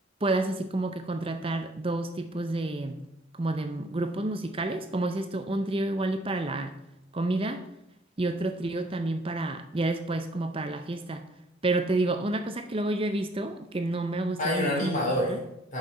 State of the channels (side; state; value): both; normal; correlation 0.60